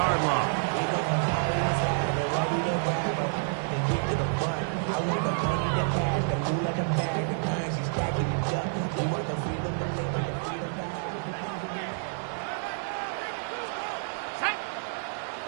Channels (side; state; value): left; silent; 59 dB below the other